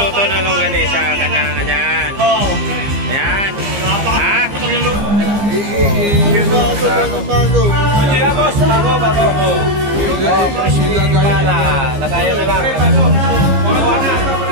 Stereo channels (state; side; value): late; left; 15 ms